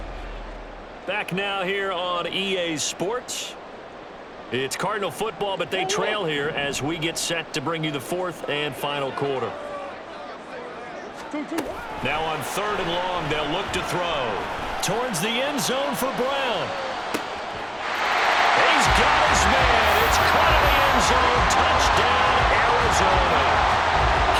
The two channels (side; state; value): both; identical; correlation 1.00